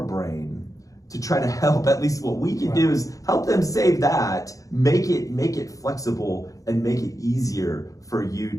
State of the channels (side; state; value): right; late; 0.16 ms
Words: brain to try to help? At least what we can do is help them save that, make it flexible, and make it easier for you